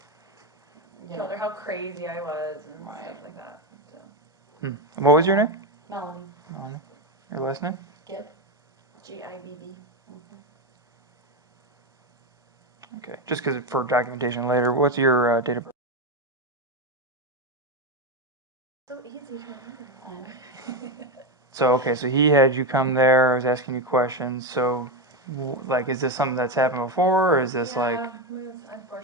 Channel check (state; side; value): normal; both; correlation 0.12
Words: Told her how crazy I was and Right. stuff like that. So. What was your name? Melni Your last name? Gibb. Gibb. Okay, just because for documentation later, what's your date of birth? So easy to remember. So, okay, so he had you come there, I was asking you questions, so, like, is this something that's happened before, or is this like?